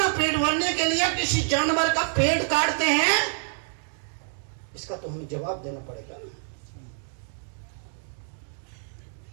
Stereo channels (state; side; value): silent; left; 60 dB below the other